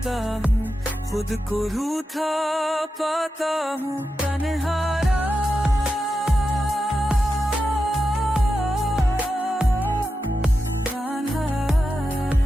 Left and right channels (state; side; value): normal; both; correlation 0.89